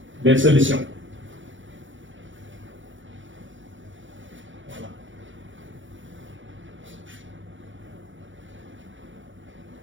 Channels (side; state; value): left; late; 0.56 ms